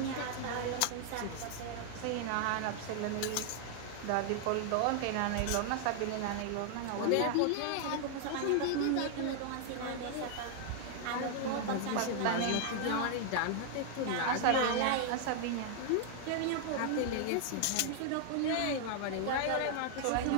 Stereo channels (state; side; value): different; both; correlation 0.00